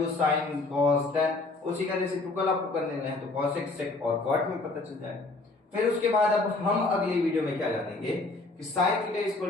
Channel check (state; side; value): quieter; right; 3.3 dB